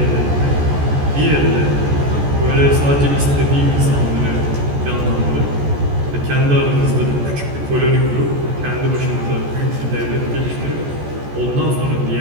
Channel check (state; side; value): late; left; 14 ms